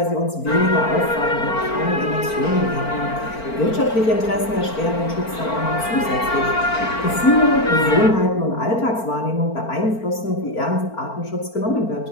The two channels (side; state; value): right; late; 4.4 ms